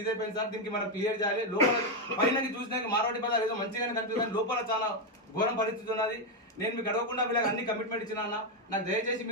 ఇదైపోయింది సార్. దీనికి మనం క్లియర్ చేయాలి. లోపల పైనకి చూసినాక మార్వాడి బజార్ ఏదో మంచిగానే కనిపిస్తుంది, లోపల చాలా ఘోరం పరిస్థితి ఉన్నది. నేను మీకు అడగకుండా వీళ్ళకి అన్ని కమిట్మెంట్ ఇచ్చినా. నాకు దయచేసి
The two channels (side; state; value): both; normal; correlation 0.05